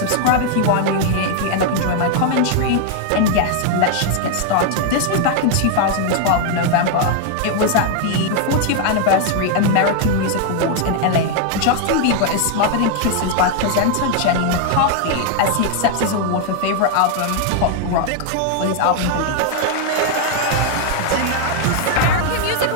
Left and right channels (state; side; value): different; both; correlation 0.00